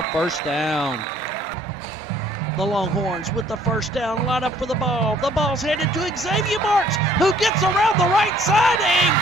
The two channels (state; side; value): normal; both; correlation 0.59